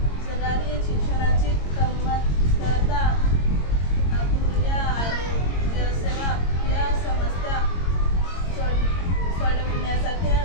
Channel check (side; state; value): right; late; 22 ms